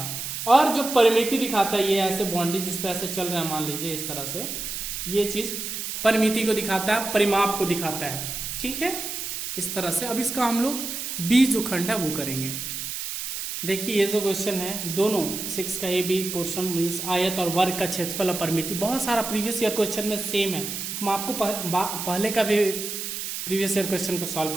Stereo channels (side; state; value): right; noise; hiss, 5 dB below the sound